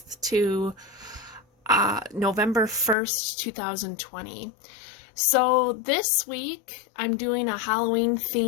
to November 1st, 2020. So this week I'm doing a Halloween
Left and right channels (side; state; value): right; drops out; at 3.0 s